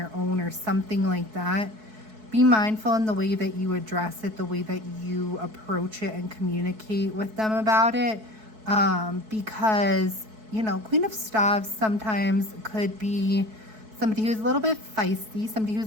own or something like that, be mindful in the way that you address it, the way that you approach it and communicate with them about it. Because, Queen of Staves sometimes could be somebody who's a little bit feisty, somebody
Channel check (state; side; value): late; left; 4.6 ms